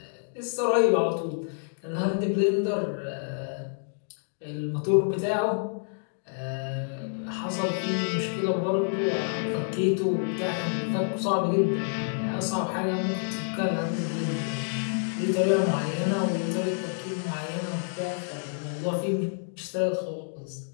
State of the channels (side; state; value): right; silent; digital silence